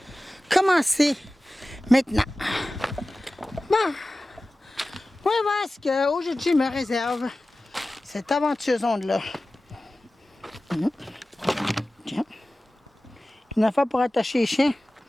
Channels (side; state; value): both; normal; correlation 0.96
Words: commencer maintenant. Bon, on va voir ce qu'aujourd'hui me réserve cette aventure zone-là. Tiens. Une affaire pour attacher les chiens.